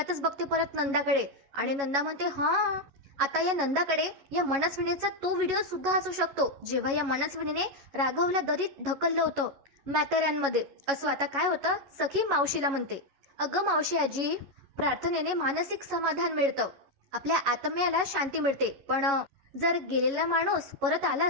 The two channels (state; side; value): late; left; 11 ms